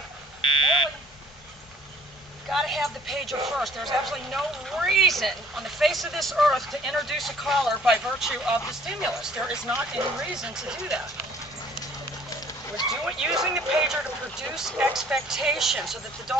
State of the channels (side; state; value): both; normal; correlation 0.55